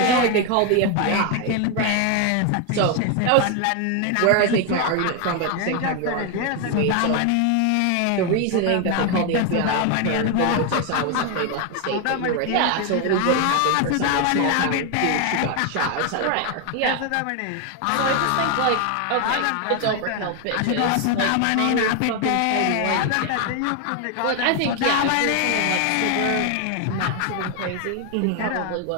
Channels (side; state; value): both; different; correlation 0.01